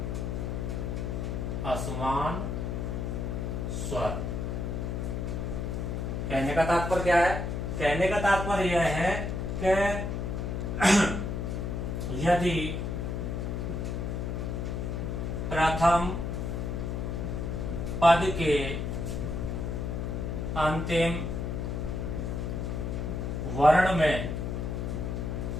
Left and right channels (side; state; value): left; noise; hum, 2 dB below the sound